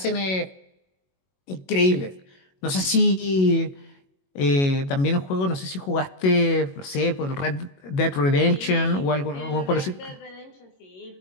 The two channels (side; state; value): right; late; 22 ms